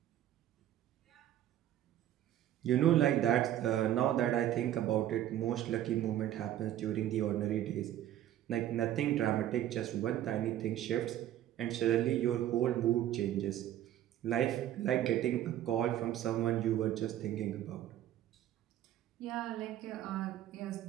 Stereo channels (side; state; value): left; quieter; 12.2 dB